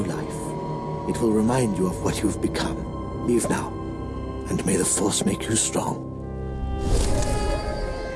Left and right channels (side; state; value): both; identical; correlation 1.00